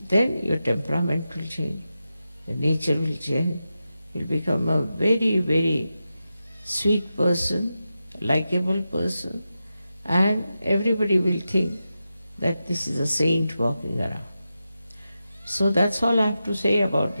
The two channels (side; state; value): both; inverted; correlation -0.91